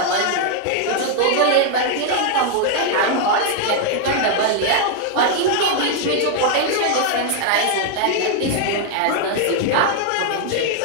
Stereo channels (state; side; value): different; both; correlation 0.00